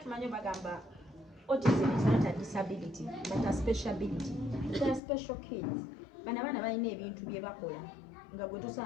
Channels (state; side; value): drops out; right; at 5.0 s